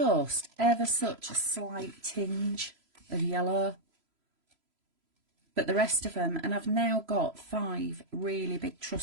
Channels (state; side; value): late; left; 3.0 ms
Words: ever such a slight tinge of yellow. But the rest of them, and I've now got 5 really big